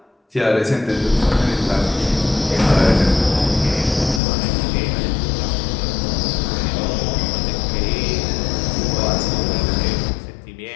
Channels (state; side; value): drops out; right; at 4.2 s